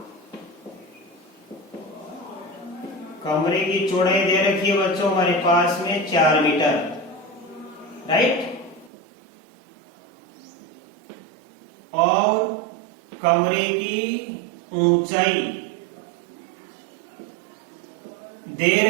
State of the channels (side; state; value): left; drops out; at 8.9 s